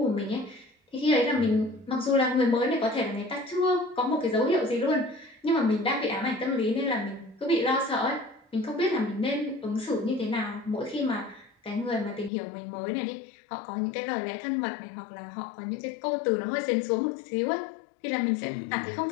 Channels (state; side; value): drops out; right; at 12.3 s